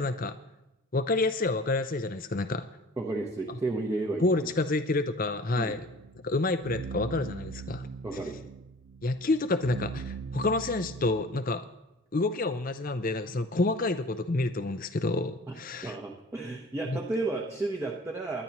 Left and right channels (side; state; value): both; normal; correlation 0.46